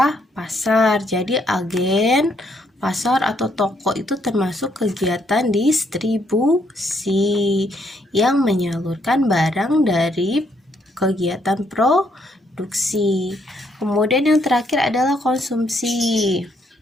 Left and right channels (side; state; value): both; normal; correlation 0.72